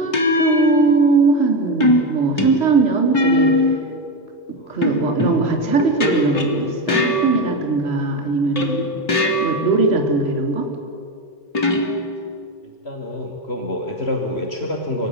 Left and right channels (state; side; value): late; right; 3.0 ms